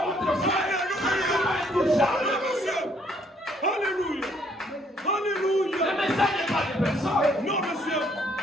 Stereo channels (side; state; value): both; normal; correlation 0.66